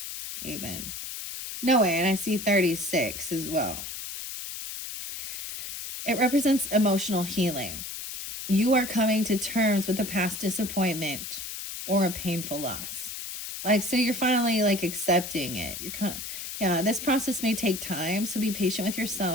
even. No way, and I see 36 as well. It represents emotional healing. You are coming to terms with a past disappointment or a painful loss. Like, so you're finally like accepting it. Yeah, this process may take time, so be patient with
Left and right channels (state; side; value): noise; left; hiss, 7 dB below the sound